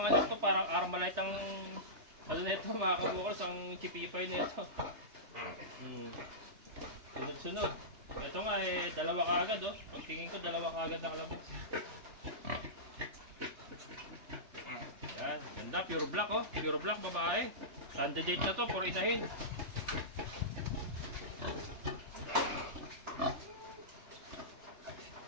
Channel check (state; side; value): late; left; 3.4 ms